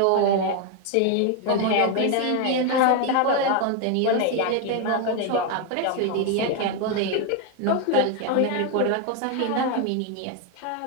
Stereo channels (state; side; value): different; both; correlation 0.01